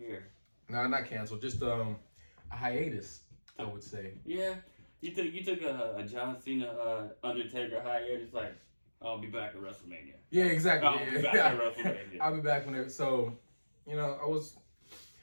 No, not canceled. Just a hiatus, I would say. Yeah. You took a John Cena Undertaker hiatus, like, I'll be back at WrestleMania. Yeah, exactly. I'll be back at WrestleMania. I'll be back whenever. So, I was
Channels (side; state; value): both; inverted; correlation -1.00